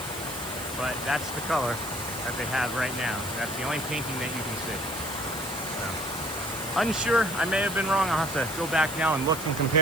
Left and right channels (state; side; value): noise; left; hiss, 12 dB below the sound